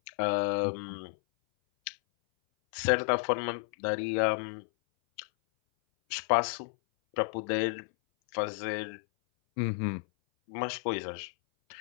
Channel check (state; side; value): silent; right; 57 dB below the other